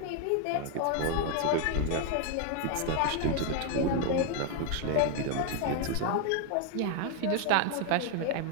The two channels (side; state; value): both; different; correlation 0.01